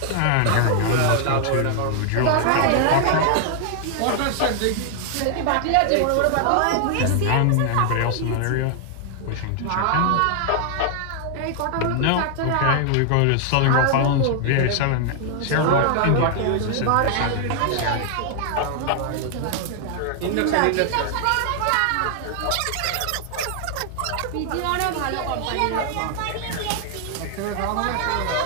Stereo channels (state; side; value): different; both; correlation 0.00